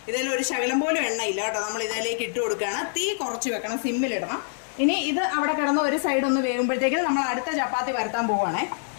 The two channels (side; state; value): right; silent; 61 dB below the other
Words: ഇതിൽ ഒരു ശകലം പോലും എണ്ണയില്ല കേട്ടോ. നമ്മൾ ഇതിലേക്ക് ഇട്ട് കൊടുക്കുകയാണ്. തീ കുറച്ച് വെക്കണം, സിമ്മിലിടണം. ഇനി ഇത് അവിടെ കിടന്ന് ഒരു സൈഡ് ഒന്ന് വേകുമ്പോഴത്തേക്കും നമ്മൾ അടുത്ത ചപ്പാത്തി പരത്താൻ പോവുകയാണേ.